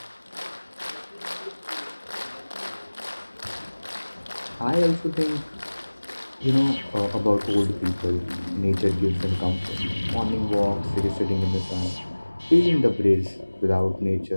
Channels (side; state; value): both; inverted; correlation -1.00